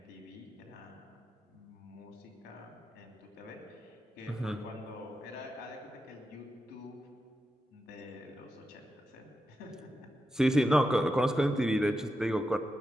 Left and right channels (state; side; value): normal; both; correlation 0.88